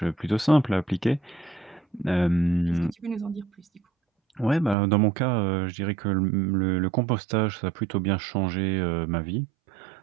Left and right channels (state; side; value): drops out; left; at 4.8 s